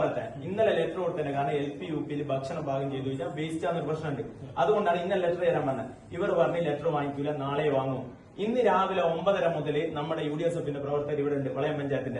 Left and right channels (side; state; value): both; identical; correlation 1.00